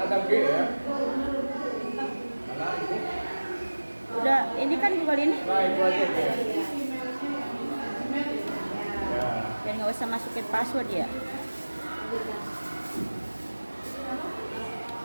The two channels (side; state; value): both; inverted; correlation -1.00